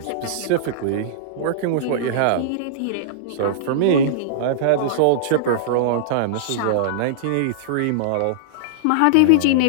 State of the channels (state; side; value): different; both; correlation -0.02